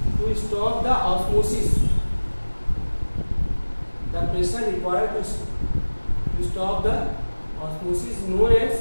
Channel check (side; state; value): both; inverted; correlation -1.00